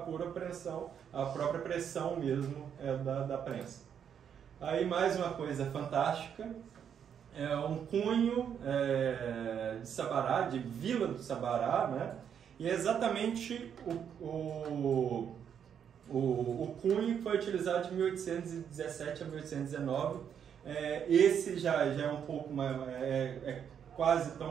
pressão, a própria pressão mesmo da prensa. Aí mais uma coisa fantástica, um cunho de Sabará, de Vila do Sabará, né? E é exatamente o cunho foi utilizado de 1817 a 1819. Esse já é um pouco mais, quase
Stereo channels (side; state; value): left; quieter; 8.2 dB